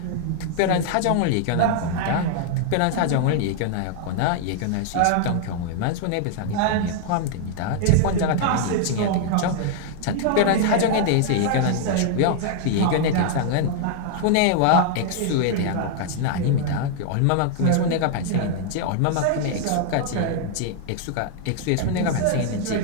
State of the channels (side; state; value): both; different; correlation 0.00